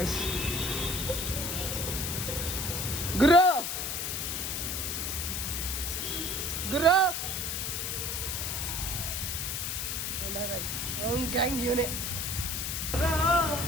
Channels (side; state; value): left; noise; hiss, 1 dB below the sound